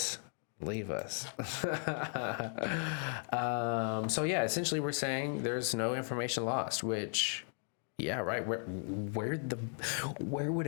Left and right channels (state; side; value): silent; right; 54 dB below the other